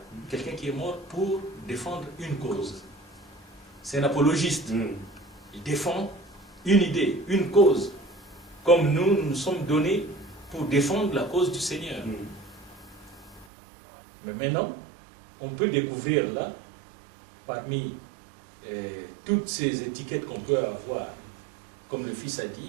quelqu'un qui est mort pour défendre une cause. C'est un apologiste. Il défend une idée, une cause. Comme nous sommes donnés pour défendre la cause du Seigneur. Mais maintenant, on peut découvrir là, parmi toutes ces étiquettes qu'on peut avoir, comme le Fils a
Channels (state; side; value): drops out; left; at 13.5 s